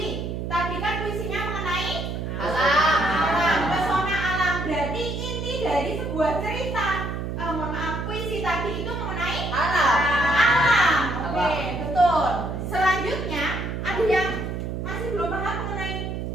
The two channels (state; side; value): noise; right; hum, 4 dB below the sound